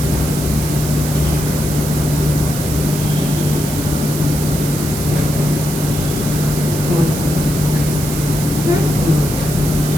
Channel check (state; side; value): noise; right; hiss, 8 dB below the sound